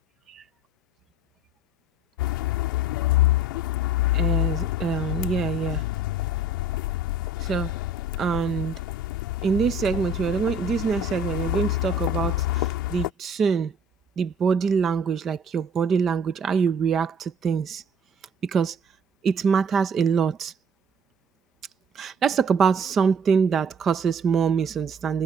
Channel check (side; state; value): both; normal; correlation 0.49